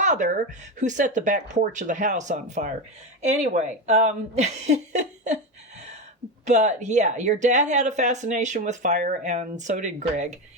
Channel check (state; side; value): normal; both; correlation 0.16